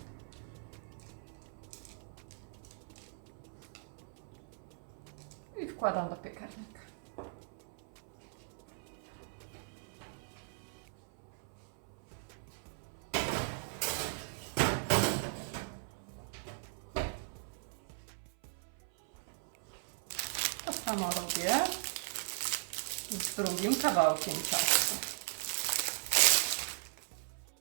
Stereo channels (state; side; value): silent; left; 52 dB below the other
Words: I wkładam do piekarnika. To samo robię z drugim kawałkiem ciasta.